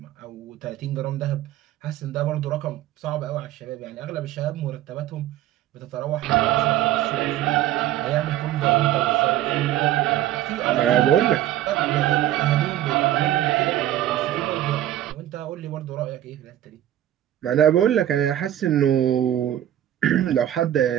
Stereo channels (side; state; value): left; quieter; 12.6 dB